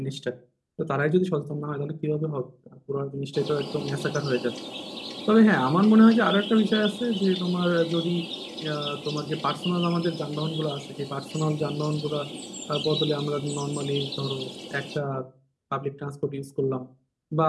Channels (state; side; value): identical; both; correlation 1.00